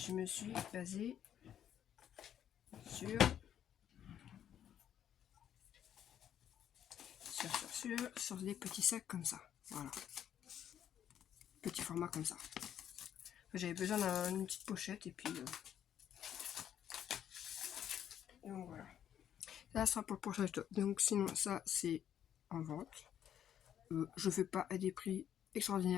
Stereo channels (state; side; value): quieter; right; 10.0 dB